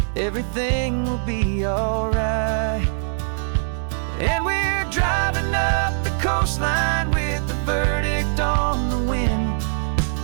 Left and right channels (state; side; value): silent; left; digital silence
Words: everything will be alright. And we're driving up the coastline with the verdict on the wind.